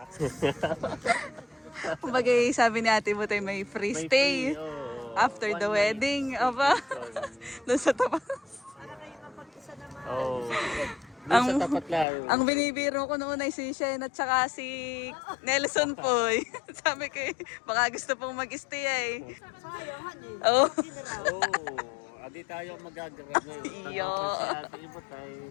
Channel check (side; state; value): right; drops out; at 12.1 s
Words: Kumbaga sabi ni Ate Butay may free May stay free, oh, after one the night. wedding. Aba, doon sa tapat. Para kayo mapag-isa naman. Oh. Doon sa tapat lang. Ang binibiro ko noon ay si Shen at saka si Nelson po. Sabi ko, baka gusto pong mag-stay eh. Sayang, honey. Oh. Oh, adi tayo magagrab ngayon. Iyo. Si Ate Ibot ay